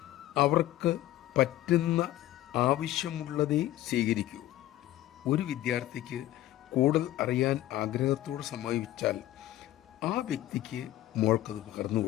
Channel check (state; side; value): quieter; right; 14.5 dB